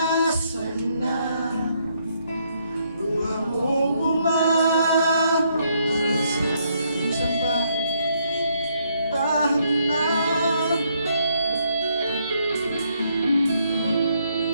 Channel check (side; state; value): both; inverted; correlation -0.73